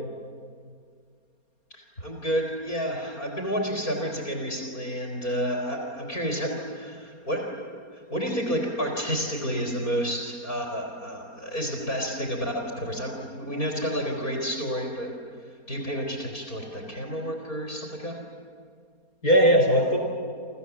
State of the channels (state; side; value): late; right; 4.3 ms